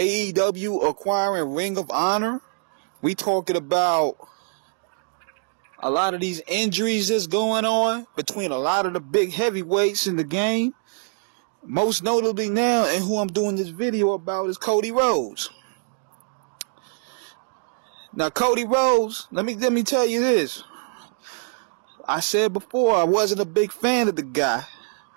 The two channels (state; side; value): silent; left; 63 dB below the other